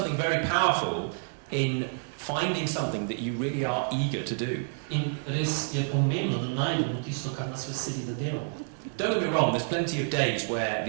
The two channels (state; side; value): silent; left; 59 dB below the other